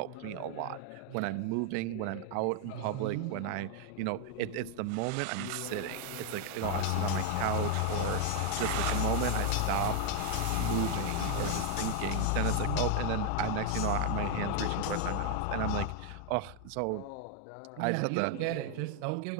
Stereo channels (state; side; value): different; both; correlation 0.00